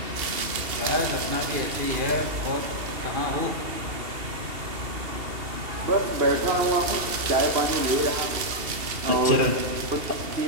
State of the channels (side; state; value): left; late; 2.7 ms